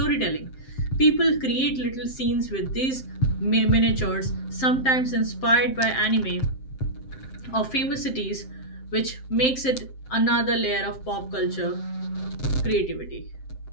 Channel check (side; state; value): right; late; 7.6 ms